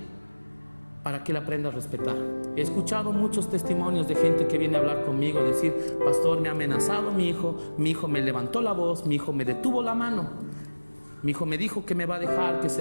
para que él aprenda a respetar. He escuchado muchos testimonios de gente que viene a hablar conmigo, decir: pastor, me ha amenazado mi hijo me levantó la voz, mi hijo me detuvo la mano, mi hijo me dijo que me va a dejar, que se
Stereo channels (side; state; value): both; inverted; correlation -1.00